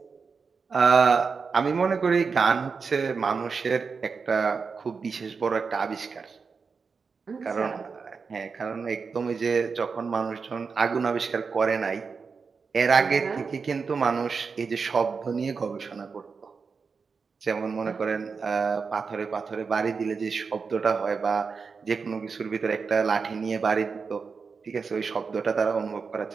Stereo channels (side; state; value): left; quieter; 5.2 dB